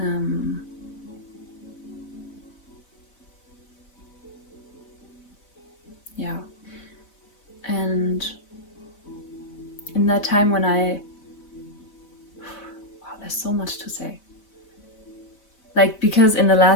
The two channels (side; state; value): right; late; 4.0 ms